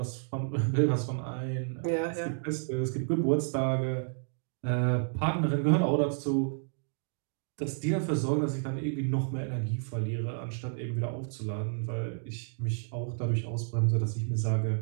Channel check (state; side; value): silent; left; digital silence